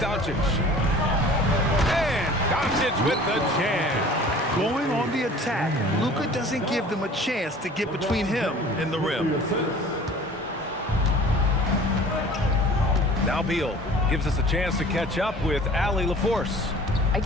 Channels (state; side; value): normal; both; correlation 0.46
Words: And Doncic with the jam. Going on the attack, Luka doesn't give them a chance to get between him and the rim. Now Beal gives us a chance to catch up with Allie LaForce. I